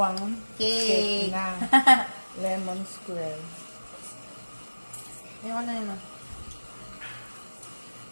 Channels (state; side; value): inverted; both; correlation -1.00